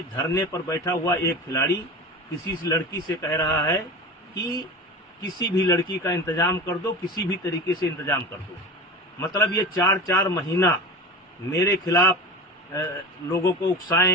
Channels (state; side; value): normal; both; correlation 0.30